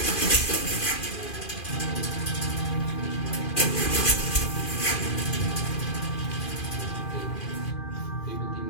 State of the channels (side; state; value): right; late; 2.4 ms